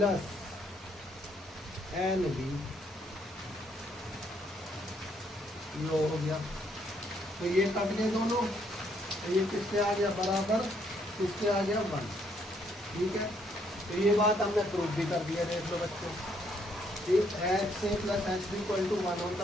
Nb, लो हो गया। तो ये कट गए दोनों, तो ये किससे आ गया, बराबर किससे आ गया, 1, ठीक है। तो ये बात हमने प्रूफ भी कर दिया, देख लो बच्चों। ठीक, XA plus XB equal to 1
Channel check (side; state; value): both; normal; correlation 0.70